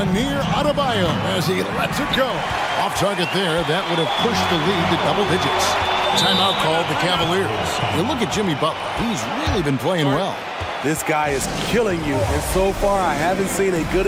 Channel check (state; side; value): identical; both; correlation 1.00